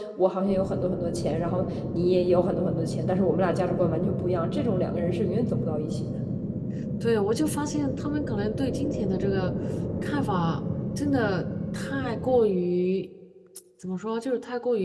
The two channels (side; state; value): both; identical; correlation 1.00